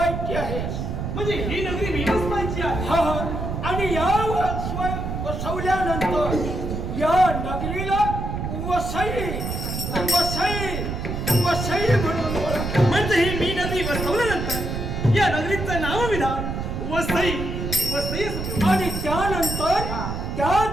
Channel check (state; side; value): noise; right; rumble, 4 dB below the sound